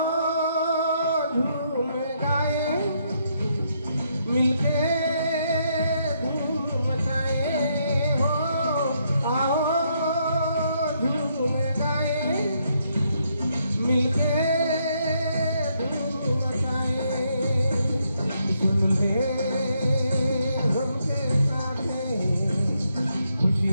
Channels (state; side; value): inverted; both; correlation -0.76